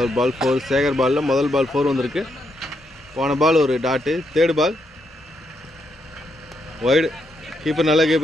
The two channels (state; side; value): normal; both; correlation 0.79